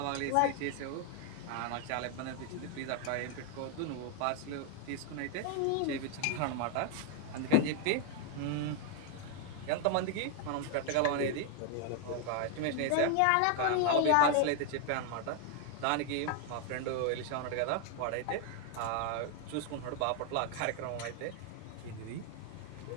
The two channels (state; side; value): different; both; correlation 0.00